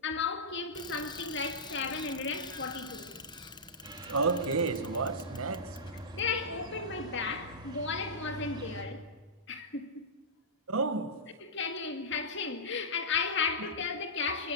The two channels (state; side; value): normal; both; correlation -0.15